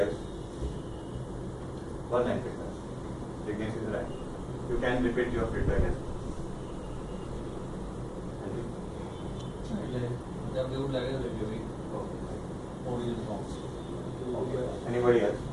else? One line feedback. Ignis is right. You can repeat your feedback as well. Okay. Anybody else?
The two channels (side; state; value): both; identical; correlation 1.00